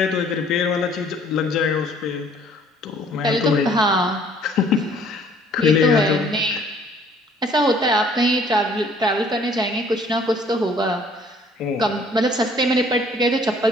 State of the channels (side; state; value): both; normal; correlation 0.58